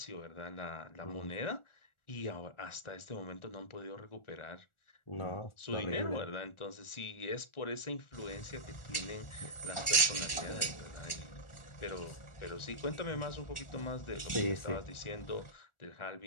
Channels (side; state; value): right; late; 1.4 ms